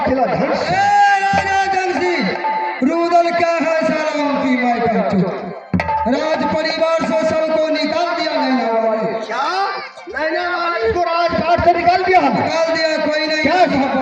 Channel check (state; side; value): identical; both; correlation 1.00